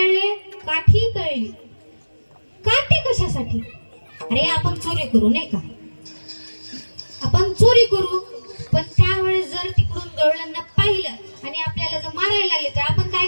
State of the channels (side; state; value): both; inverted; correlation -1.00